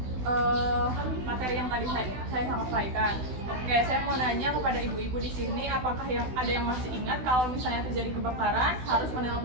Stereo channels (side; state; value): left; late; 16 ms